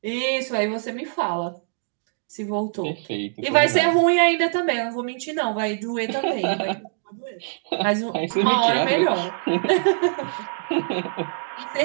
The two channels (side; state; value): left; silent; digital silence